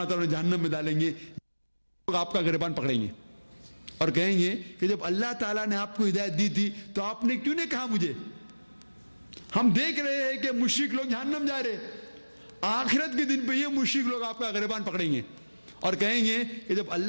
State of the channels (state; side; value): inverted; both; correlation -1.00